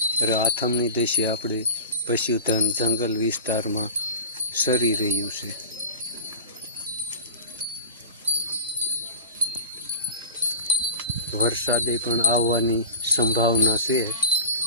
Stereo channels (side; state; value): both; inverted; correlation -0.34